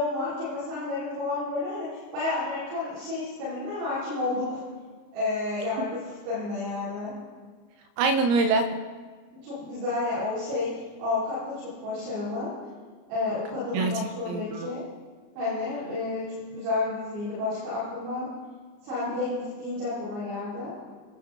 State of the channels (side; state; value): left; late; 34 ms